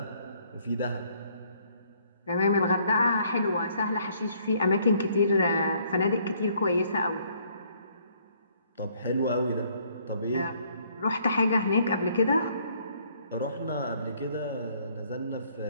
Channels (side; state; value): both; inverted; correlation -0.65